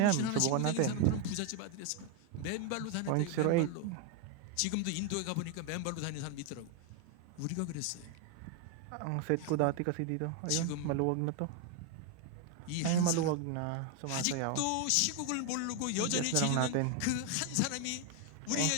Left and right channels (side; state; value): both; different; correlation 0.01